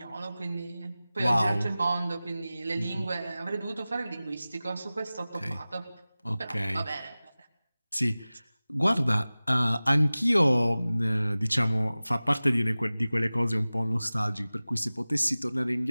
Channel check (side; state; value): both; inverted; correlation -0.98